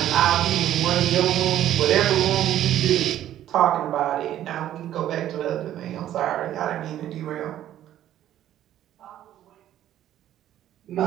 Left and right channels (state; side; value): quieter; left; 12.1 dB